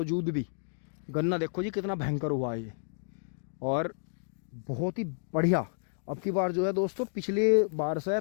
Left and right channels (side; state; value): right; silent; digital silence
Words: भी गन्ना देखो जी कितना भयंकर हुआ है ये, और बहुत ही बढ़िया। अब की बार जो है दोस्तों, पिछले बार से